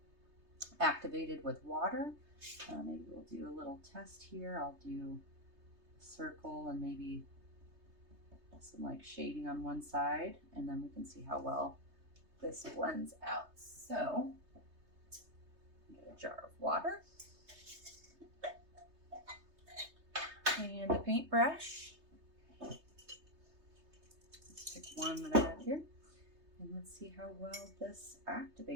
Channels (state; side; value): late; left; 3.2 ms